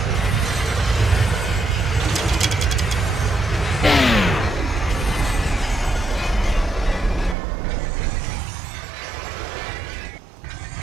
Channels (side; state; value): left; drops out; at 7.4 s